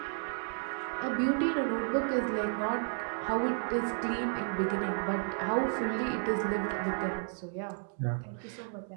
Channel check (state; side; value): silent; left; 56 dB below the other